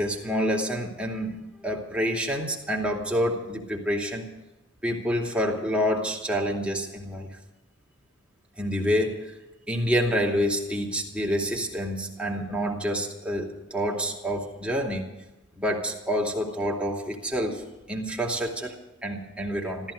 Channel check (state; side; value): normal; both; correlation 0.53